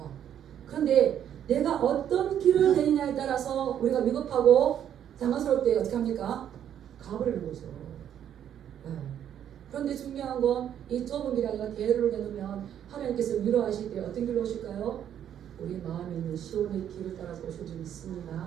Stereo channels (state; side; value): quieter; left; 9.9 dB